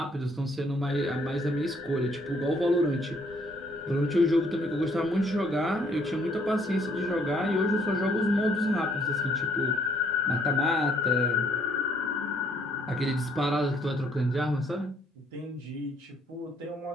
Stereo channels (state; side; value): normal; both; correlation 0.66